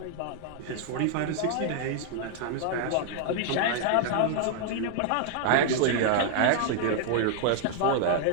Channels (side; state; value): both; different; correlation 0.00